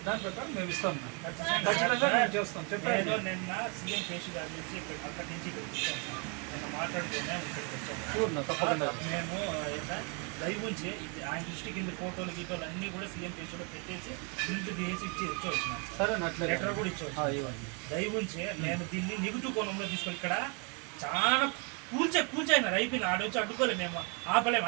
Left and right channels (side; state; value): left; quieter; 35.2 dB